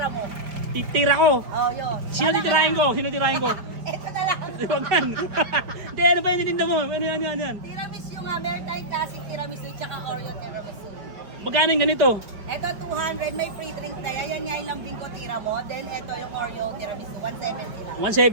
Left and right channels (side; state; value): left; late; 5.1 ms